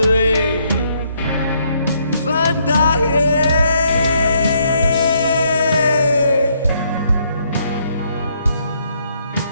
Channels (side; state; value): both; inverted; correlation -0.72